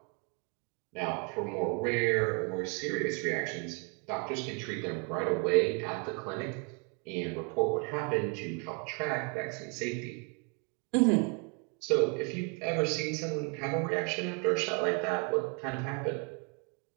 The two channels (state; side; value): quieter; left; 35.4 dB